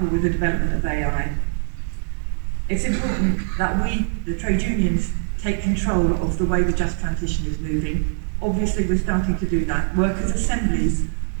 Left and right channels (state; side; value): silent; left; digital silence